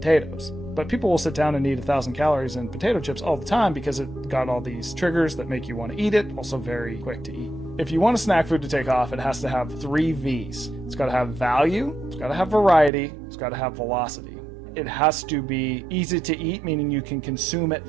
But people will sit down and eat 1,000 calories in potato chips all the time because it got all these triggers that make you want to eat it, also very quick to eat. If you want a snack food to take off, it has to have 3 V's. It's got to have value, it's got to have variety, it's got to have velocity. It has to be easy to eat, meaning you can consume it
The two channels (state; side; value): drops out; left; at 12.9 s